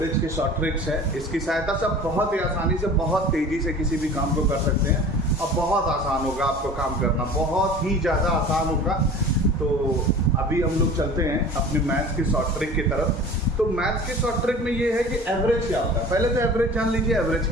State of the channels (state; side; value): normal; both; correlation 0.41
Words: के शॉर्ट ट्रिक्स है। इसकी सहायता से आप बहुत ही आसानी से, बहुत तेज़ी से किसी भी काम को कर सकते हैं और बहुत आसान होगा आपको काम करना, बहुत ही ज़्यादा आसान होगा। तो अभी हम लोग चलते हैं अपने मैथ्स की शॉर्ट ट्रिक की तरफ। तो मैथ्स की शॉर्ट ट्रिक में ये है कि एवरेज क्या होता है। पहले तो एवरेज जान लीजिए, एवरेज